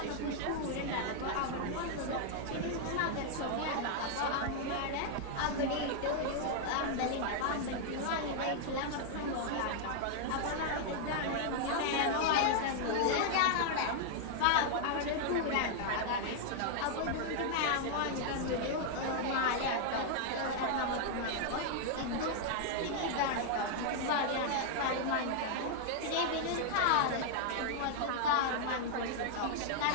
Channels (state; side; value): different; both; correlation 0.00